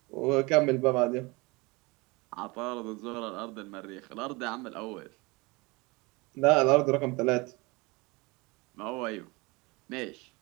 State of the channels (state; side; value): quieter; left; 25.3 dB